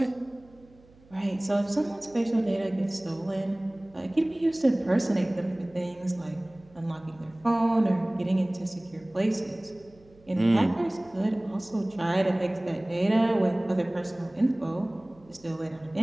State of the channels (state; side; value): noise; right; hum, 27 dB below the sound